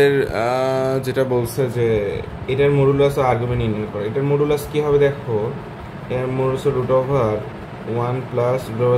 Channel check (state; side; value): identical; both; correlation 1.00